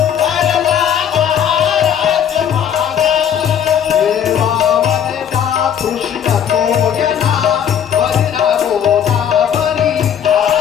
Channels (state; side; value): quieter; right; 8.8 dB